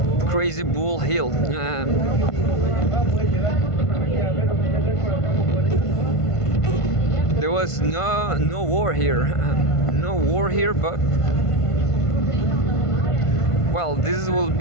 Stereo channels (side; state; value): right; late; 1.5 ms